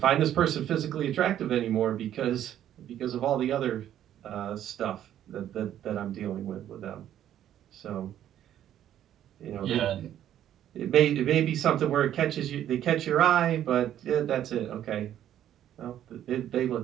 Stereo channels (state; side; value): quieter; left; 11.2 dB